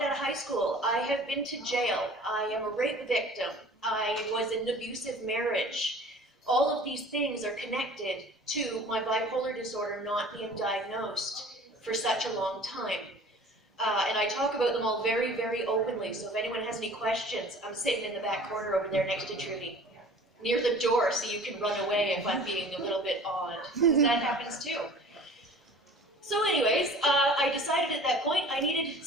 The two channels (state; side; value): normal; both; correlation 0.45